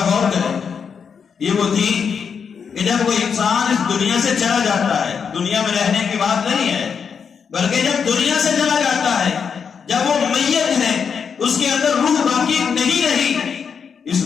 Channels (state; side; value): quieter; right; 6.5 dB